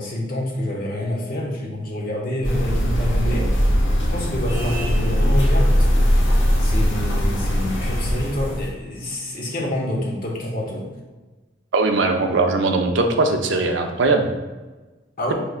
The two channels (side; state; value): both; normal; correlation 0.68